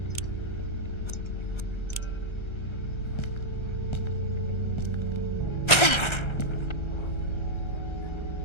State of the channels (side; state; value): right; late; 1.3 ms